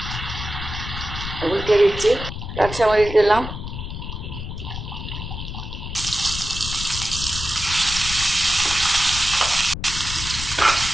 উল্টে দিচ্ছি। কাঁচামরিচ দিলাম,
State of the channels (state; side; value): noise; left; rumble, 7 dB below the sound